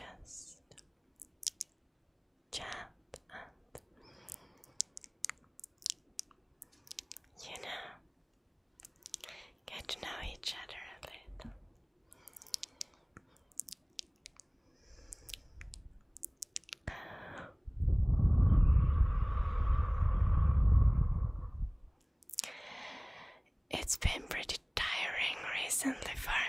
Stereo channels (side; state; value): both; identical; correlation 1.00